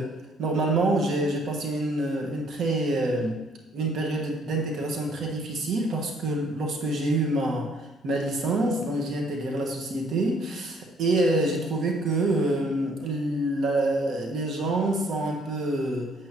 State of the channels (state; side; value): normal; both; correlation 0.63